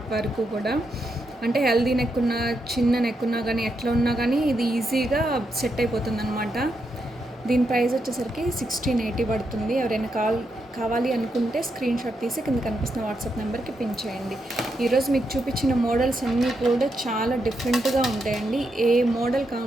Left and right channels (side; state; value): both; normal; correlation 0.83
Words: వరకు కూడా. అంటే హెల్దీ నెక్ ఉన్నా, చిన్న నెక్ ఉన్నా కానీ, ఎట్లా ఉన్నా కానీ ఇది ఈజీగా సెట్ అయిపోతుంది అనమాట. దీని ప్రైస్ వచ్చేసరికి 1680 పడుతుంది. ఎవరైనా కావాలి అనుకుంటే స్క్రీన్ షాట్ తీసి కింద కనిపిస్తున్న వాట్సాప్ నెంబర్కి పిన్ చేయండి. ఈరోజు మీకు చూపించిన మోడల్స్ అన్నీ కూడా చాలా డిఫరెంట్గా ఉంటాయండి. ఏ మోడల్కి ఆ